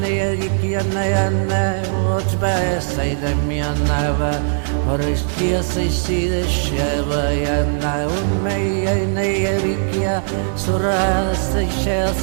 Gikiana, watch by a side of me and never, or is just I see the Sheva, and I will may a Naya Vikia, Sura, the shell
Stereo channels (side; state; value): left; silent; digital silence